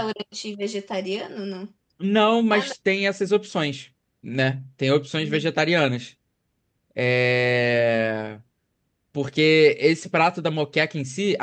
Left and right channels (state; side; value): identical; both; correlation 1.00